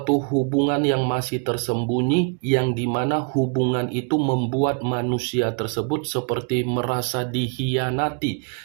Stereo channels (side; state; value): left; quieter; 37.9 dB